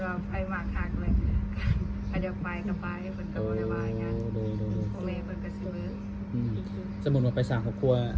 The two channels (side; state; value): both; identical; correlation 1.00